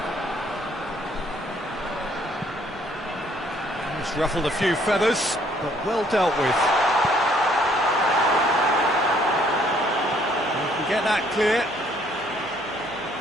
It's ruffled a few feathers, but well dealt with. We can get that clear.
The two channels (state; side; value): noise; left; hum, 26 dB below the sound